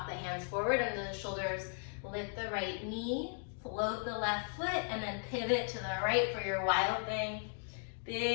the hands forward and the shoulders, lift the right knee, float the left foot, and then pivot to the right for your wild thing.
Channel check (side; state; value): right; silent; 53 dB below the other